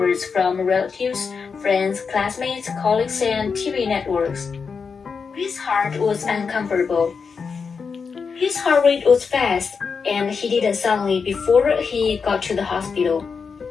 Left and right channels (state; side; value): quieter; right; 5.5 dB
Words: from relatives, friends, classmates, colleagues, and TV networks. His heart was uncomfortable. His heart rate was fast, and he didn't suddenly before he got to the hospital.